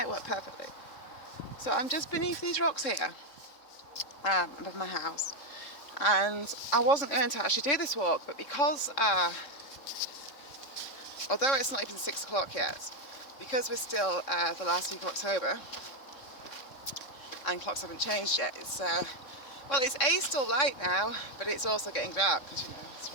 work perfectly. So I'm just beneath these rocks here, above my house, and I wasn't going to actually do this walk, but because, although it's not even 6 o'clock yet, because we're still the last week of October, and clocks haven't changed yet, it's... well, it's still light now, but it's also getting dark because, you know, it's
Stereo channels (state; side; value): late; right; 3.6 ms